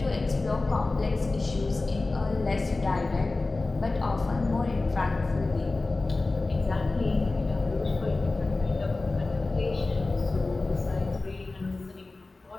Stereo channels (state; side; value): quieter; right; 3.3 dB